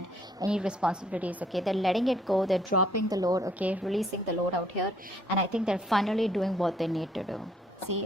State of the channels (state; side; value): normal; both; correlation 0.65